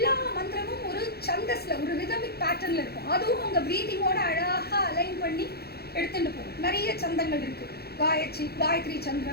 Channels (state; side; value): late; right; 0.46 ms